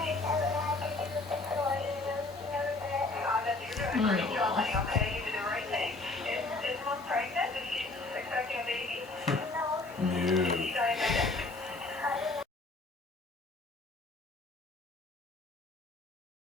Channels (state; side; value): quieter; right; 3.3 dB